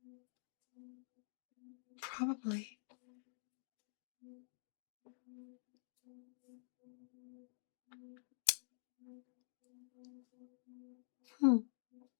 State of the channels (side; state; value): right; silent; digital silence